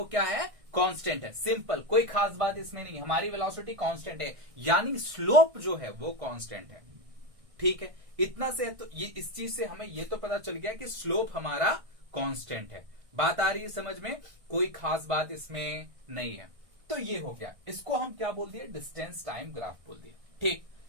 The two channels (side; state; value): left; late; 1.6 ms